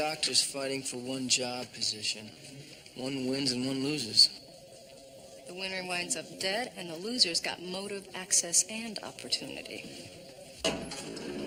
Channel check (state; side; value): identical; both; correlation 1.00